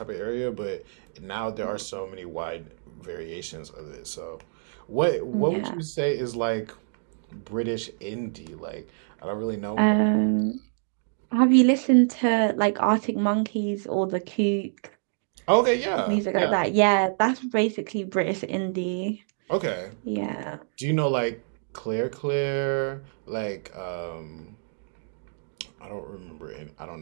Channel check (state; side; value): silent; left; digital silence